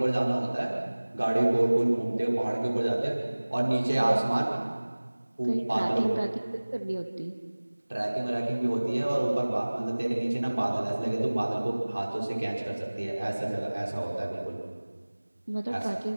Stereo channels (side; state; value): both; inverted; correlation -1.00